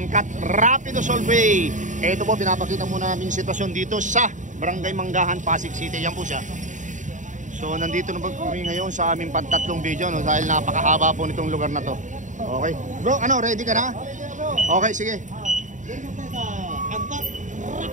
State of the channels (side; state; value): left; late; 0.36 ms